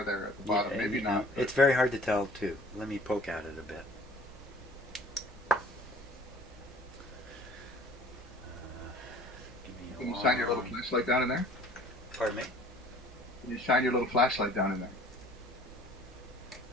there at the bottom. Yeah, Maybe not. it's very hard to tell too. Let me poke at it a bit. Give me Can a you shine your little long. flashlight down in there? Pardon me. Can you shine your little flashlight down in there?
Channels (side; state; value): both; normal; correlation 0.51